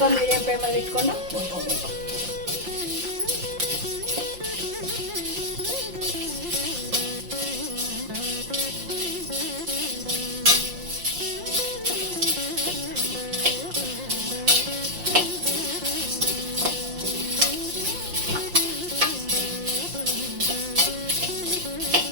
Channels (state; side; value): late; left; 5.7 ms